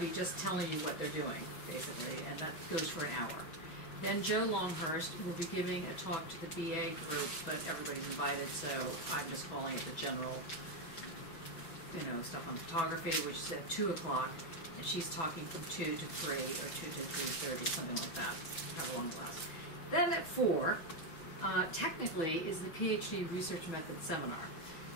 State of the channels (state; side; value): late; right; 6.1 ms